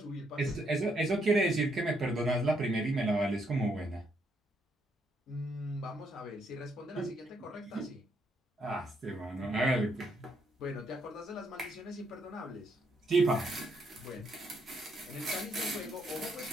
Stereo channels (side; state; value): both; normal; correlation 0.74